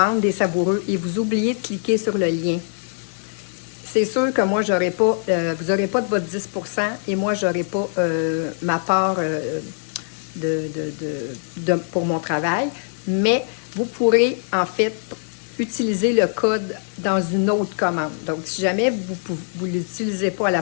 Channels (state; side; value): silent; right; digital silence